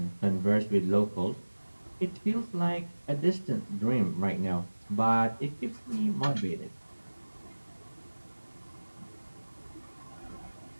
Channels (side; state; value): both; inverted; correlation -1.00